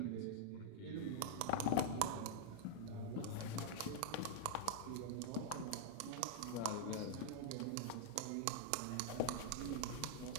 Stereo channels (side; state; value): both; different; correlation -0.01